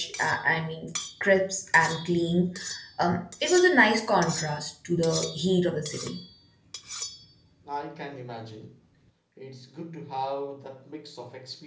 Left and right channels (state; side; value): identical; both; correlation 1.00